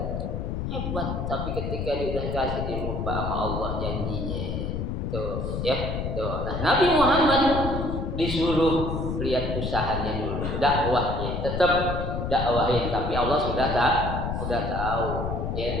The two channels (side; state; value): left; noise; rumble, 3 dB below the sound